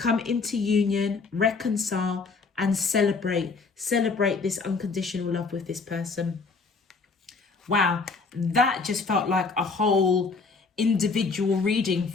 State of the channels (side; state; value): right; quieter; 4.4 dB